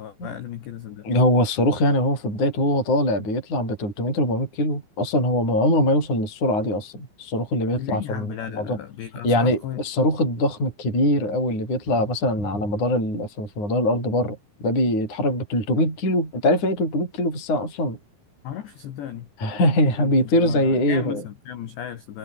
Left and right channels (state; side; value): late; right; 9.7 ms